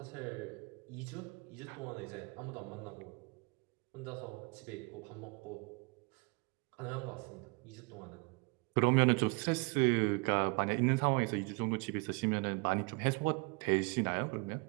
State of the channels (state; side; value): quieter; left; 30.2 dB